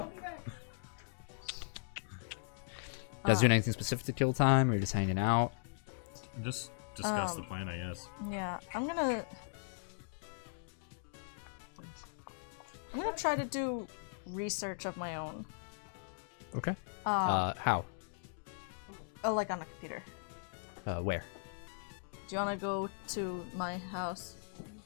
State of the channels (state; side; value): silent; right; digital silence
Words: You guys doing anything specific to kill time, or just hanging out? Just discuss the plan, I guess. Yeah, I'm gonna try to do research of my own. Okay. Um, How? like on a computer. Where? Do you want to go to my house?